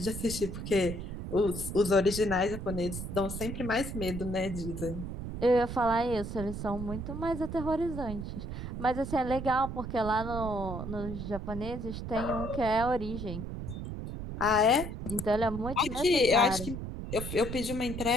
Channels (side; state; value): right; noise; rumble, 6 dB below the sound